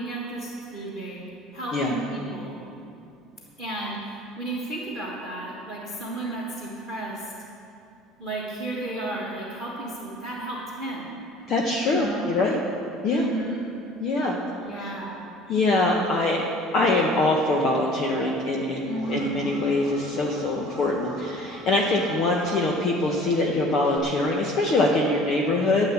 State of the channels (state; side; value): normal; both; correlation 0.48